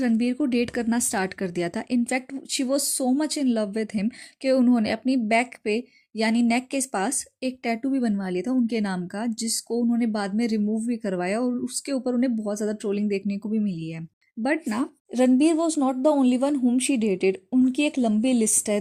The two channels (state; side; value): identical; both; correlation 1.00